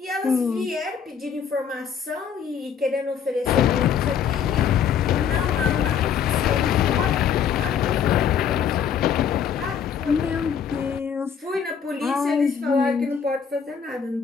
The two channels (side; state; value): right; quieter; 7.5 dB